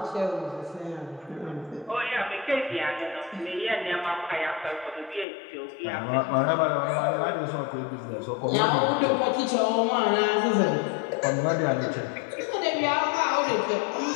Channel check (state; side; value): drops out; right; at 5.2 s